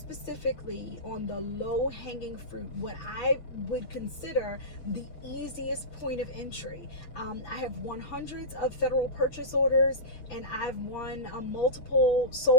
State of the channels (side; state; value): right; late; 6.6 ms